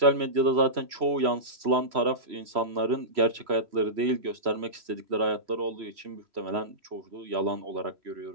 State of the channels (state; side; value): late; left; 3.0 ms